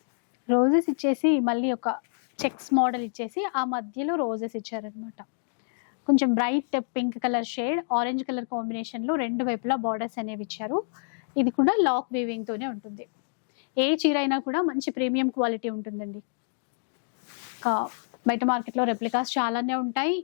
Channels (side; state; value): right; silent; digital silence